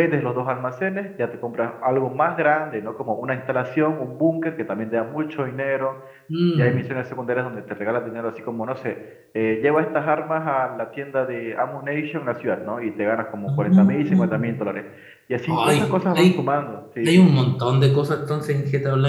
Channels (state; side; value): identical; both; correlation 1.00